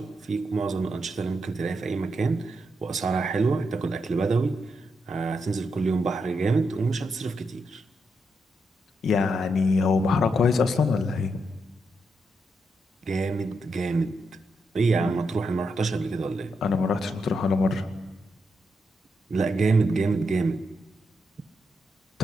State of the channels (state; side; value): normal; both; correlation 0.82